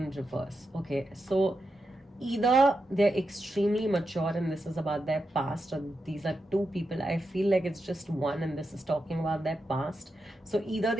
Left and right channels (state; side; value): normal; both; correlation 0.87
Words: reverse. Okay, so either they're extremely mature and this is about their past, or these are two people. I feel like it's just one and this is talking about their past. So either